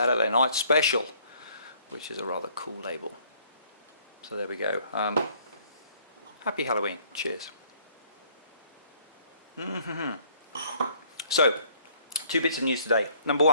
Night Special, which is a rather cool label. So there we go. Happy Halloween. Cheers. So, two bits of news today. Number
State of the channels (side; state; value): both; inverted; correlation -0.60